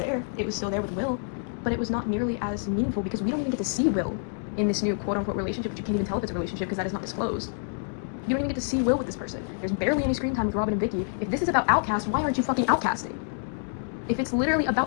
It was still there with Will, but it was not nearly as meaningful because we don't even get to see Will in this new quote-unquote relationship, which you can't even tell if it's a relationship because that is not disclosed. You don't even get to see Will with this person. There's barely any screen time with Robin and Vicky. If this is about outcast, why aren't you fucking outcasting? If it's literally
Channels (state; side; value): silent; right; digital silence